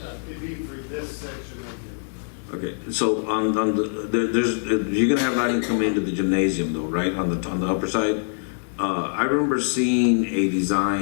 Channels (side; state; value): right; silent; digital silence